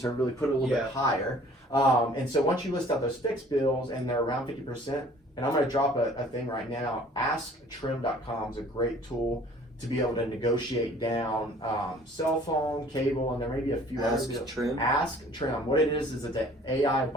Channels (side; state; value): both; normal; correlation 0.53